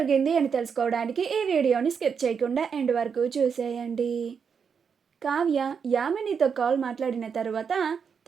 అని తెలుసుకోవడానికి ఈ వీడియోని స్కిప్ చేయకుండా ఎండ్ వరకు చూసేయండి. కావ్య యామినితో కాల్ మాట్లాడిన తర్వాత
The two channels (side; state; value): left; quieter; 6.5 dB